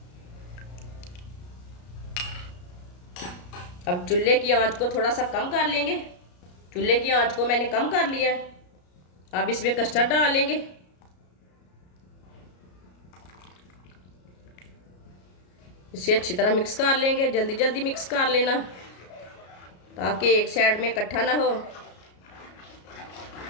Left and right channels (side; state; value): right; late; 33 ms